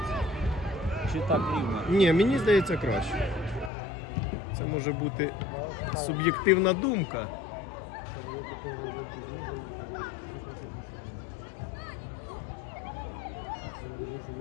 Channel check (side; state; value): right; drops out; at 3.7 s